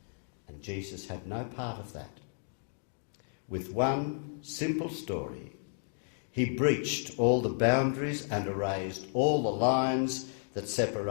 And Jesus had no part of that. With one simple story, he breached all the boundaries and erased all the lines that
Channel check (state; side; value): silent; right; digital silence